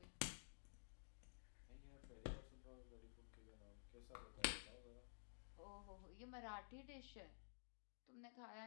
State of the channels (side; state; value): right; silent; digital silence